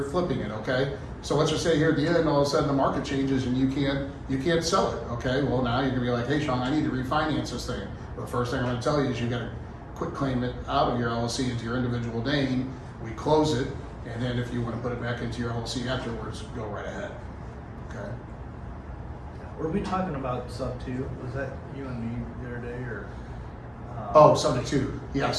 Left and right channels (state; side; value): identical; both; correlation 1.00